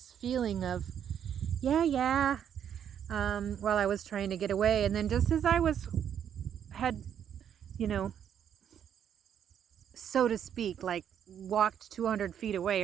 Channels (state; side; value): quieter; left; 9.0 dB